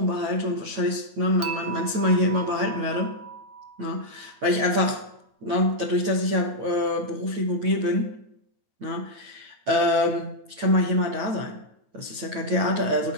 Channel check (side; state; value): left; late; 9.0 ms